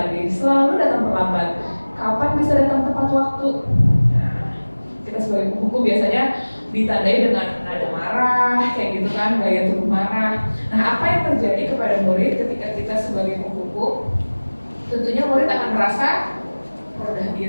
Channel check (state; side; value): inverted; both; correlation -1.00